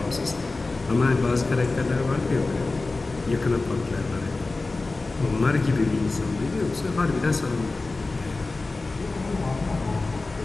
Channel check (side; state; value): right; quieter; 3.4 dB